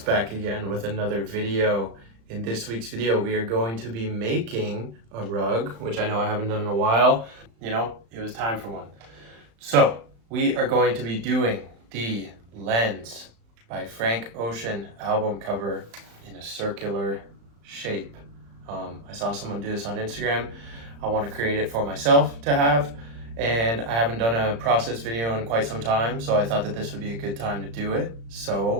again with another video. In this week's video, we are going to be making a rug, which I know I haven't done in a while. You know, it was time for one. So we are going to be doing the Lens by Frank Ocean album cover in a circular shape. I saw someone do this on Instagram. I want to create it for myself to have. And I haven't done a process video in quite some time, so I thought that this would be a good time to do it.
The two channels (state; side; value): late; left; 35 ms